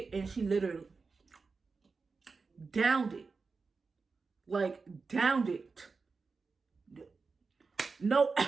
and she literally downed it. Like, downed it. No,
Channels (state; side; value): quieter; left; 4.5 dB